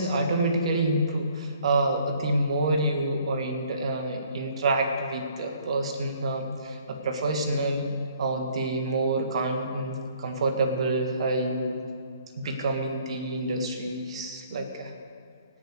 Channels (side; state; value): both; inverted; correlation -0.60